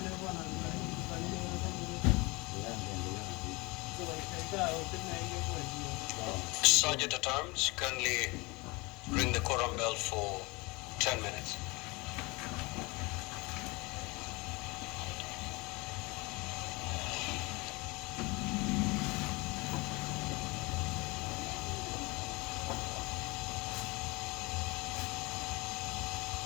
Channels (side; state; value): right; quieter; 25.3 dB